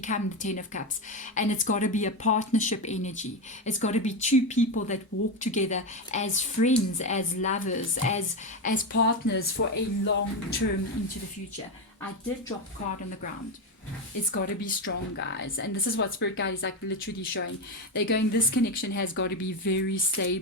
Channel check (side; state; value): both; normal; correlation 0.13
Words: 10 of Cups. And it's got to be a partnership energy. It's got to be two people that walk together as friends, as lovers, as partners for a long term into the future. I did drop a card on the ground. It's got to be strong, guys. And this is what Spirit Guide is like literally showing. They're going, this connection has got to be very